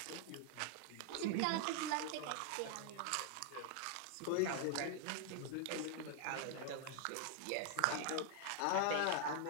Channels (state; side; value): different; both; correlation 0.00